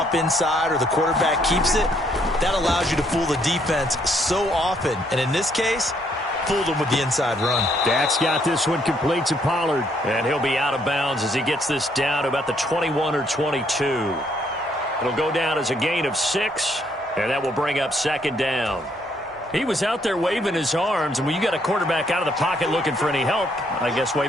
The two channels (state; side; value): normal; both; correlation 0.70